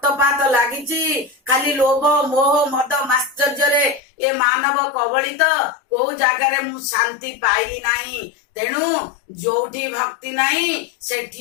लागिची खाली लोभ मोह मद माश्चर्य ए मानव कबलित को जगार मु शांति पाइली नाही। तेणु जोठी भक्ति नाही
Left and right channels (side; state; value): right; drops out; at 4.0 s